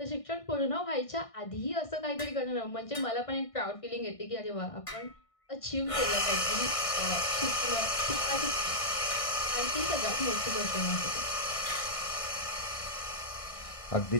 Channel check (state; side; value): late; right; 1.6 ms